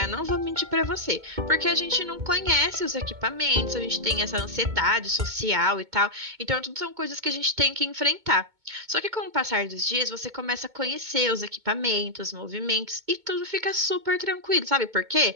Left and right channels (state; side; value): late; left; 2.2 ms